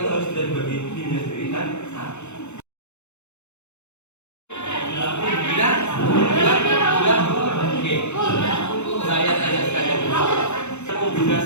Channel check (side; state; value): right; late; 0.82 ms